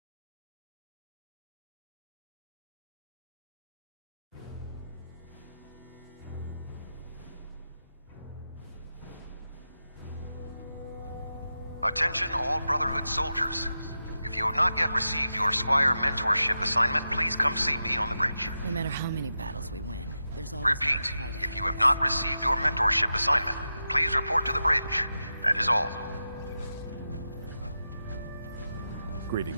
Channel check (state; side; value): inverted; both; correlation -0.90